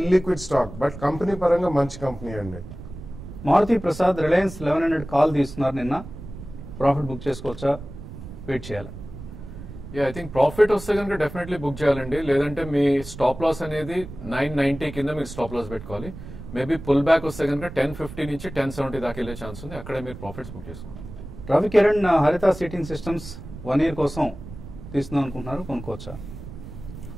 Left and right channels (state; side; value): noise; right; rumble, 13 dB below the sound